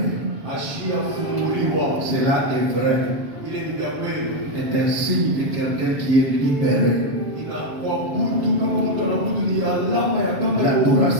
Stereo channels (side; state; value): left; late; 7.3 ms